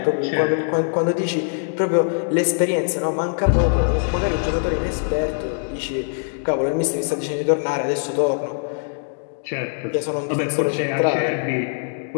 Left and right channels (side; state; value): right; silent; 64 dB below the other